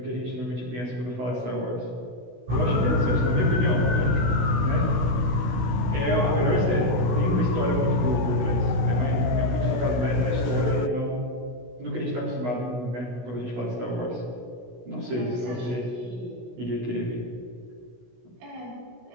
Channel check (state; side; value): late; left; 16 ms